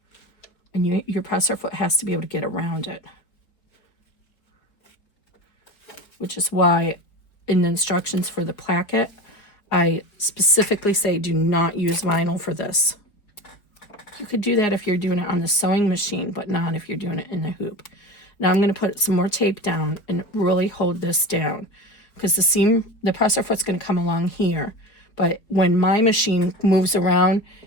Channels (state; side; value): late; right; 4.7 ms